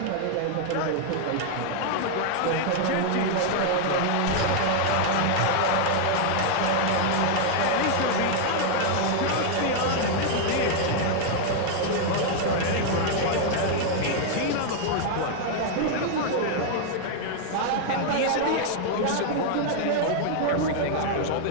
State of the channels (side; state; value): both; different; correlation 0.00